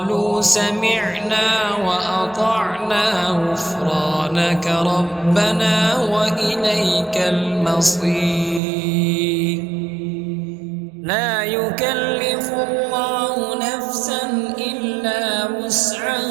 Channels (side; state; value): left; drops out; at 8.6 s